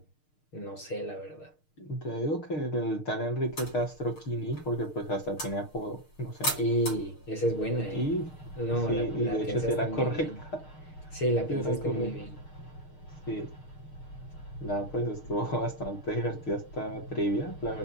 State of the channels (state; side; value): late; right; 6.5 ms